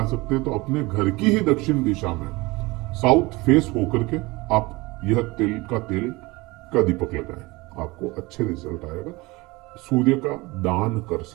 सकते तो अपने घर की ही दक्षिण दिशा में साउथ फेस होकर के आप यह तिल का दीपक लगाएं, आपको अच्छे रिजल्ट आएगा। सूर्य का दान कर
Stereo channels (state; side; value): quieter; left; 22.8 dB